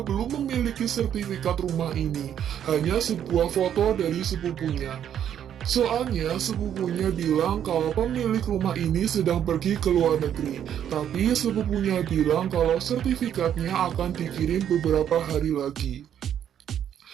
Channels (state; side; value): quieter; left; 9.6 dB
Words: belum memiliki sertifikat rumah ini, hanya sebuah foto dari sepupunya. Soalnya sepupunya bilang kalau pemilik rumah ini sedang pergi ke luar negeri, tapi sepupunya bilang kalau sertifikatnya akan dikirim beberapa hari lagi.